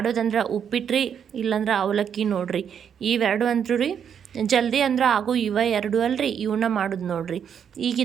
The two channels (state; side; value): quieter; left; 8.1 dB